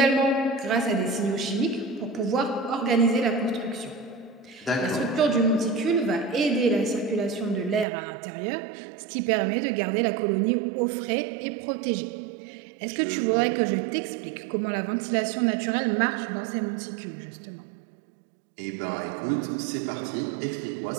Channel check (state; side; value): drops out; left; at 7.9 s